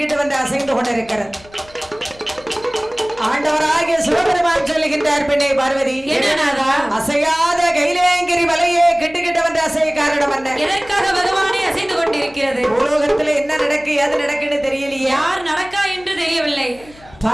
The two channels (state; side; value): noise; left; hum, 24 dB below the sound